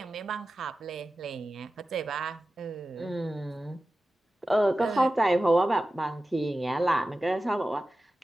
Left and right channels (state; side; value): normal; both; correlation 0.94